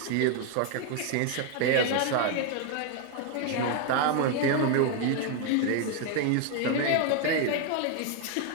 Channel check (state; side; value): different; both; correlation 0.01